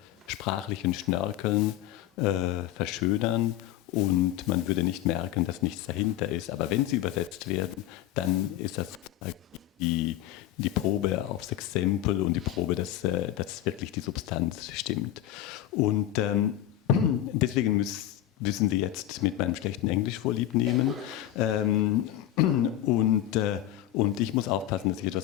sprachlichen Schnörkeln verschönern und man würde nicht merken, dass nichts dahinter ist. Aber wenn sie übersetzt werden, dann ist das die Probe aufs Exempel und die Probe, dass wirklich die Substanz stimmt. Und deswegen müssen Sie jetzt mit meinem schlechten Englisch vorlieb nehmen. Und ich muss aufpassen, dass ich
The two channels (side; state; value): right; quieter; 12.9 dB